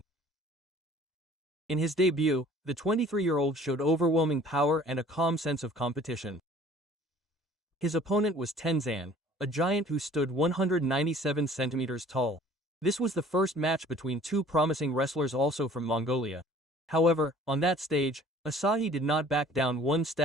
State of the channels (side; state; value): both; normal; correlation 0.51